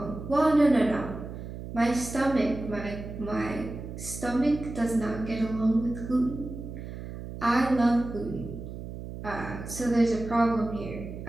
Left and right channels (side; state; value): right; noise; hum, 10 dB below the sound